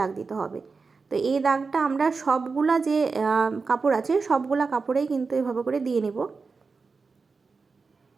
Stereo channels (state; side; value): quieter; left; 4.6 dB